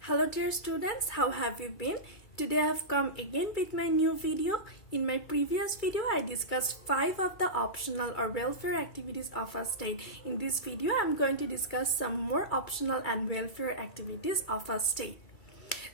Hello dear students, how have you been? Today I have come again with my new video. In my previous video, I discussed 5 of the optional or welfare activities of a state. In this video, I am going to discuss some more optional and welfare activities of a state.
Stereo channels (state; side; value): late; right; 2.3 ms